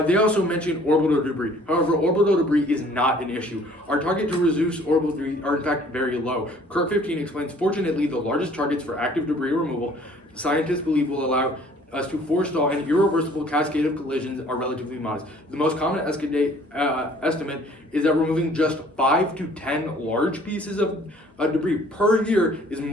They also mention orbital debris. However, orbital debris is not an issue. Our target to reduce orbital debris are in fact very low. Kirk 15 explains, fortunately, the largest targets for active debris removal scientists believe will allow us to forestall an irreversible cascade of collisions are relatively modest. The most common estimate is that removing just 5 to 10 large pieces of debris per year is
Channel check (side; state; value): both; normal; correlation 0.55